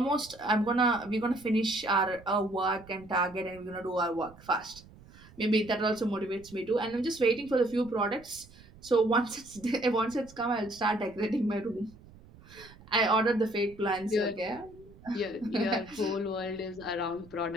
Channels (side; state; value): right; noise; rumble, 22 dB below the sound